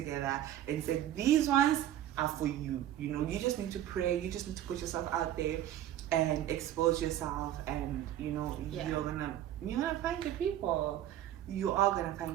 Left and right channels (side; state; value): left; quieter; 12.2 dB